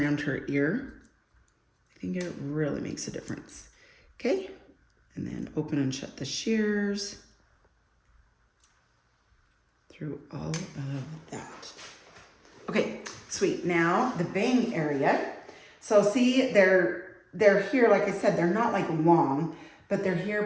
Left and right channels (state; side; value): identical; both; correlation 1.00